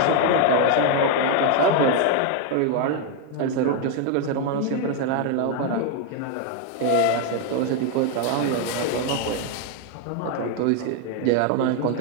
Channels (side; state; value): both; different; correlation 0.01